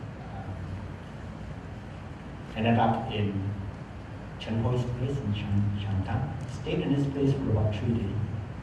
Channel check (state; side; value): identical; both; correlation 1.00